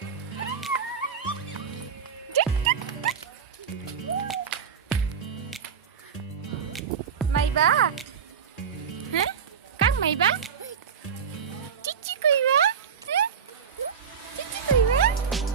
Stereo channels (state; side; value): quieter; left; 7.0 dB